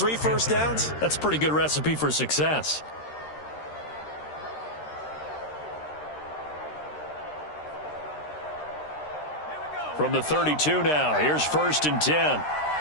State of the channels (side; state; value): right; late; 13 ms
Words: first downs. That's a pretty good recipe for success. From the 32 now, here's 1st and 10.